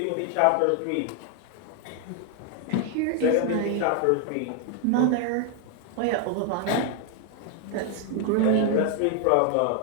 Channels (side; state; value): both; different; correlation 0.00